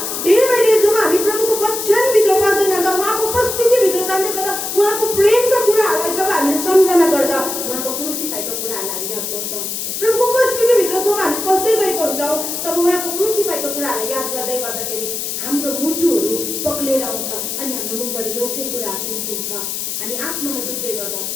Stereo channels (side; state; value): left; noise; hiss, 4 dB below the sound